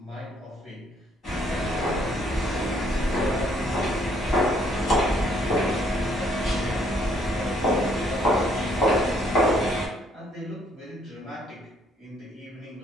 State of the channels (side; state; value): both; normal; correlation 0.66